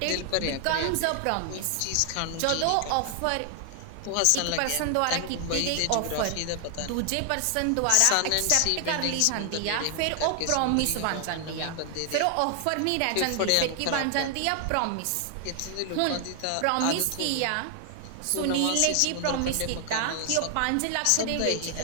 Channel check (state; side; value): different; both; correlation 0.00